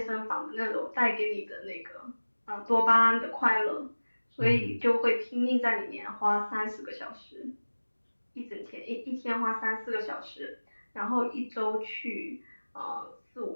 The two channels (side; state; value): both; inverted; correlation -1.00